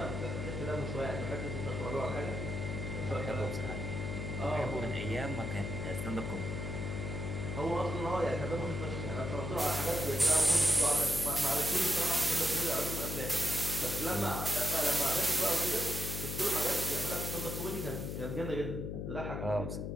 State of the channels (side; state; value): left; noise; hum, 4 dB below the sound